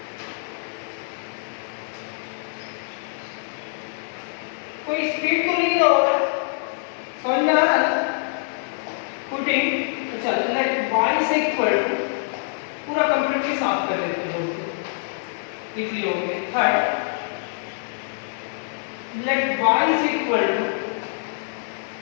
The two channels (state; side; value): silent; right; digital silence